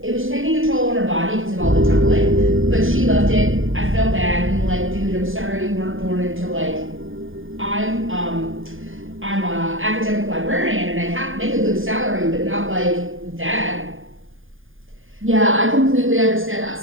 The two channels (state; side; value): late; left; 0.59 ms